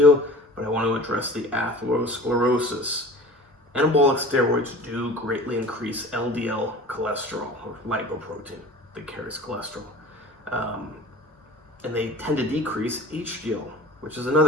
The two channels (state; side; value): normal; both; correlation 0.41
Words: but I want to address the atherosclerosis. Anabolic steroids do greatly increase LDL cholesterol, or lipoprotein that carries cholesterol. And they tend to decrease HDL, which is